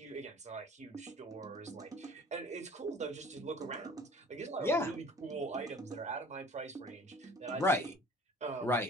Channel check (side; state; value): both; normal; correlation 0.46